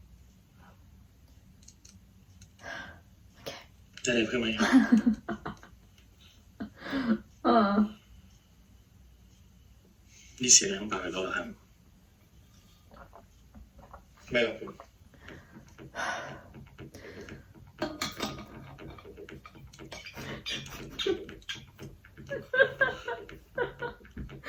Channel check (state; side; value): identical; both; correlation 1.00